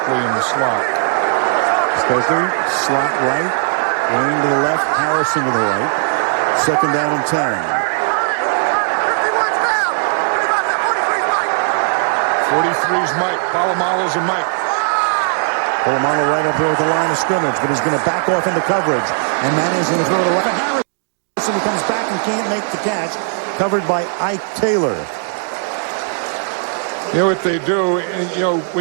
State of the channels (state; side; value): silent; left; digital silence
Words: in the slot. Stokely, slot right, Wayne to the left, Harrison to the right. Second down and 10. 43's Mike. Polamalu's a Mike. Polamalu right up there with the line of scrimmage, but he's going to back off into coverage. And Manning's going to throw the left. Harrison who comes back and can't make the catch. Covered by Ike Taylor. You know what they do? You know,